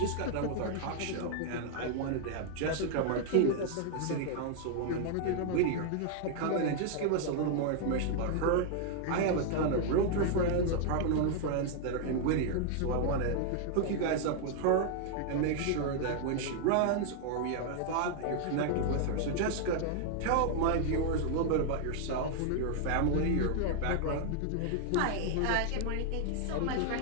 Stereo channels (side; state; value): both; different; correlation 0.00